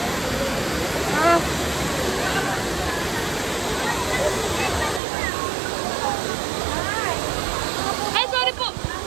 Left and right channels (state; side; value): drops out; left; at 5.0 s